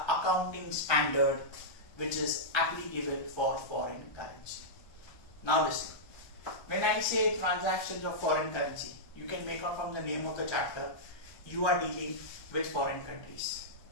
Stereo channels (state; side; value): late; right; 1.2 ms